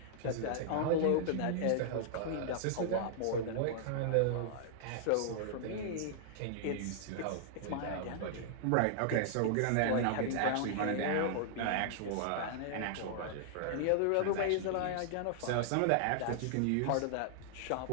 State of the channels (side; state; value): both; different; correlation -0.01